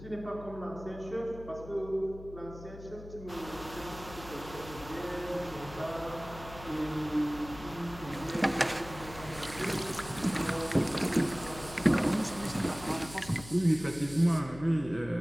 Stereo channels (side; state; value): left; noise; hum, 15 dB below the sound